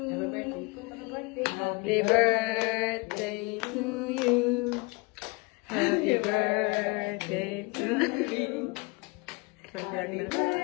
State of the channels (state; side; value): quieter; right; 27.2 dB